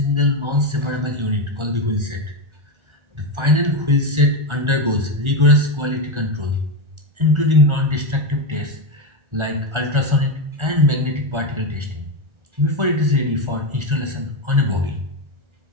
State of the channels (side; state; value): left; late; 1.4 ms